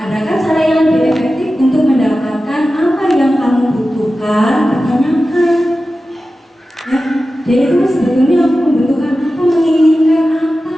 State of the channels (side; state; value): both; normal; correlation 0.94